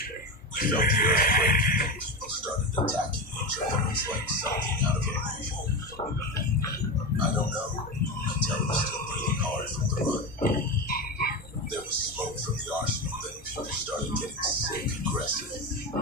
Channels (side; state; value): both; normal; correlation 0.20